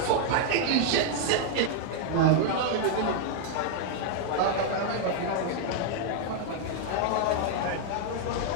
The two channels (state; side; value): different; both; correlation 0.00